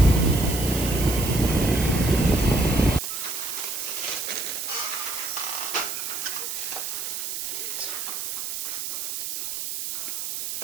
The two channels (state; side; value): noise; right; hiss, 4 dB below the sound